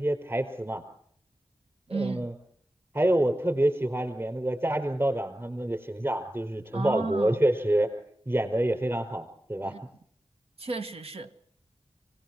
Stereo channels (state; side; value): normal; both; correlation 0.92